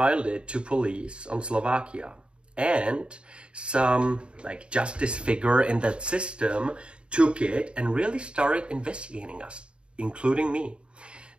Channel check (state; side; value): late; left; 0.055 ms